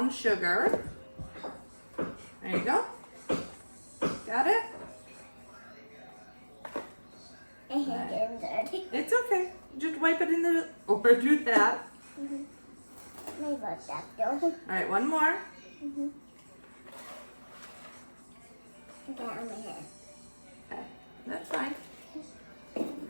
sugar. There you go. Got it? I hate getting dirty. It's okay. Just wipe it in the, or do that. Maybe that though. All right, one more. Get on my head. Okay, that's fine. I can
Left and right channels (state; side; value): inverted; both; correlation -1.00